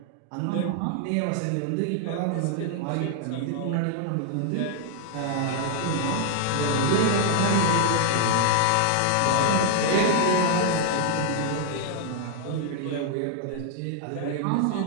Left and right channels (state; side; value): different; both; correlation 0.00